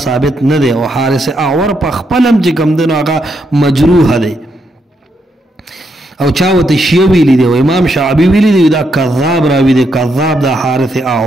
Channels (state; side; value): normal; both; correlation 0.79